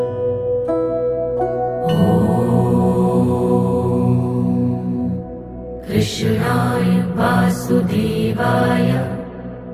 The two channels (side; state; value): both; identical; correlation 1.00